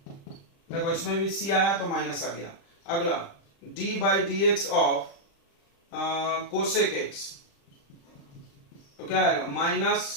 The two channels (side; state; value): right; late; 35 ms